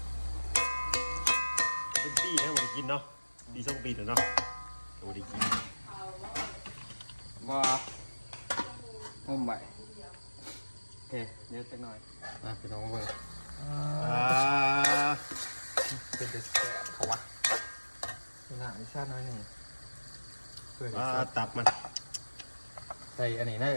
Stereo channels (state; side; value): inverted; both; correlation -1.00